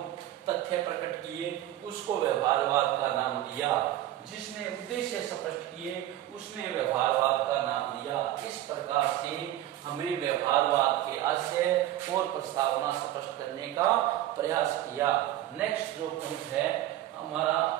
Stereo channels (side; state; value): left; quieter; 13.6 dB